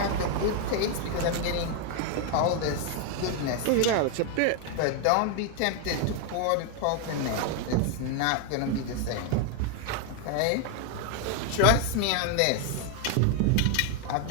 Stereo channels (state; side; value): different; both; correlation 0.01